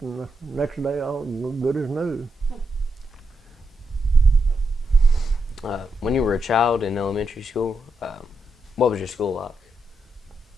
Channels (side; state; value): both; normal; correlation 0.83